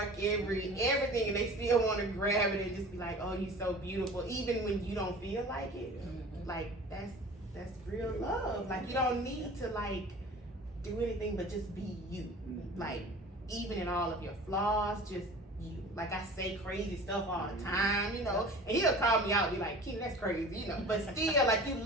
everything, and they still want to grab it and just be like, oh, you're so beautiful. Even when you don't feel like it. Like that's real love. Like you don't need to like do anything but just be you. Like even in all of your flaws, just you. Like I say crazy stuff all the time, you know, and he'll call me out and be like, Kyna, that's crazy, you know, but still like you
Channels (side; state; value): both; normal; correlation 0.41